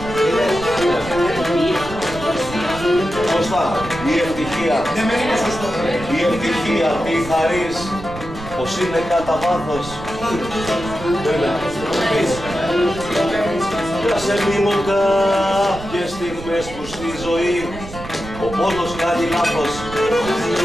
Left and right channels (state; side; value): noise; right; rumble, 13 dB below the sound